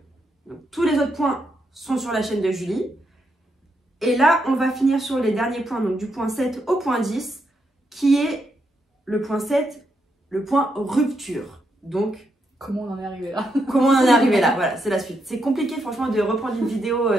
Donc, tous les autres points sont sur la chaîne de Julie. Et là, on va finir sur les derniers points, donc du point 7 au point 10, qui est le point 7, le point rupture. Donc, comment on en est arrivé là? Comment on en est arrivé là? Voilà, c'est la suite. C'est compliqué, franchement, de reprendre une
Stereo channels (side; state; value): both; normal; correlation 0.80